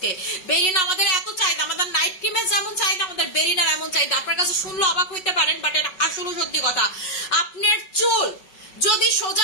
বেরিনা আমাদের এত চাহিদা, আমাদের নাইট ক্রিমের যেমন চাহিদা আমাদের বেরিনার এমন চাহিদা। আপনার কাছে শুনলে অবাক হইতে পারেন, বাট এটা আসলে সত্যি কথা। আপনার চুল যদি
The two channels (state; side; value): late; right; 5.3 ms